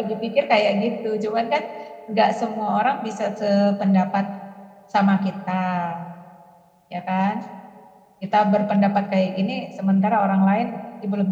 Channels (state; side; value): identical; both; correlation 1.00